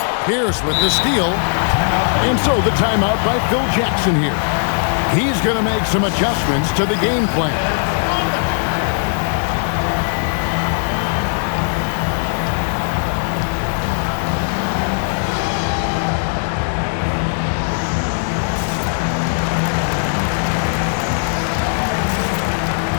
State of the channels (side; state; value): right; silent; digital silence